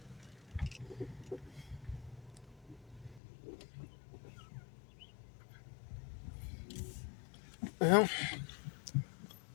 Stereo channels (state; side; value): drops out; right; at 3.2 s